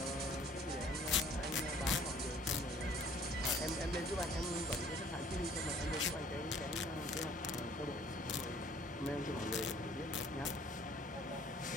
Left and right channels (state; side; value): normal; both; correlation 0.55